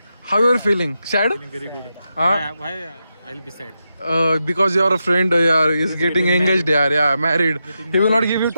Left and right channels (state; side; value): inverted; both; correlation -0.88